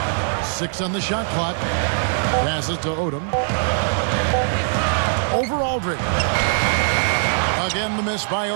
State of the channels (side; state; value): left; silent; digital silence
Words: 6 on the shot clock. Passes to Odom. Over Aldridge. Again, the miss by